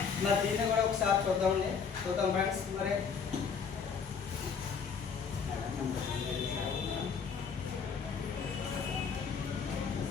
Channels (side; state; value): right; quieter; 6.2 dB